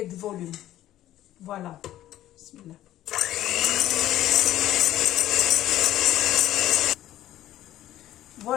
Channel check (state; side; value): quieter; right; 13.5 dB